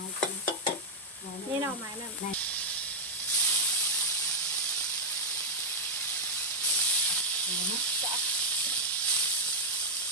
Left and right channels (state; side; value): normal; both; correlation 0.00